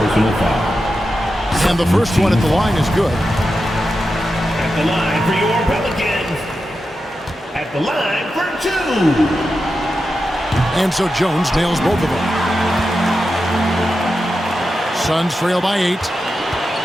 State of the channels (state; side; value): normal; both; correlation 0.90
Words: personal foul. And the first one at the line is good. At the line for your Pelicans. At the line for 2. And so Jones nails both of them. Suns trail by 8.